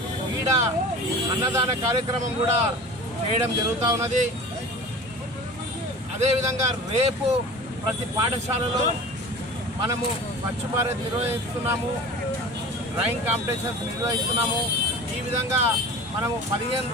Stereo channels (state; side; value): normal; both; correlation 0.37